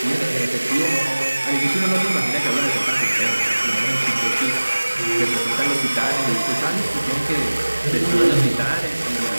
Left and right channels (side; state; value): both; inverted; correlation -1.00